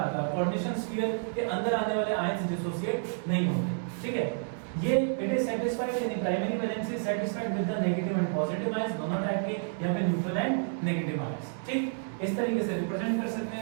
है, कोऑर्डिनेशन स्फीयर के अंदर आने वाले आयंस डिसोसिएट नहीं होते, ठीक है। ये इट इज सेटिस्फाइड, यानी primary valency satisfied with the negative and positive ions, दोनों टाइप के, या फिर न्यूट्रल एंड नेगेटिव आयंस, ठीक। इस तरीके से रिप्रेजेंट कर सकते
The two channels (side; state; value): left; silent; digital silence